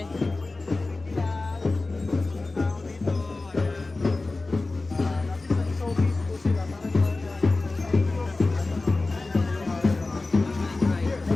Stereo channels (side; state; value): right; quieter; 3.3 dB